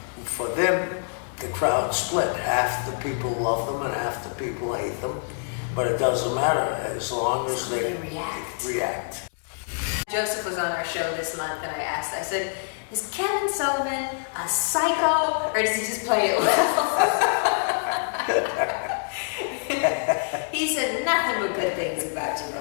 For them, the crowd split. Half the people love them and half the people hate them. But it doesn't matter as long as they react. Joseph was on our show this month, and I said, is Kevin Sullivan a psycho, or does he just play it well? He said nothing but good things about you,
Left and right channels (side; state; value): right; silent; digital silence